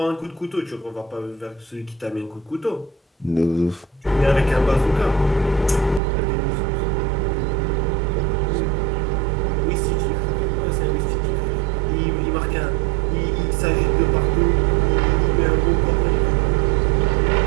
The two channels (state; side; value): drops out; left; at 6.0 s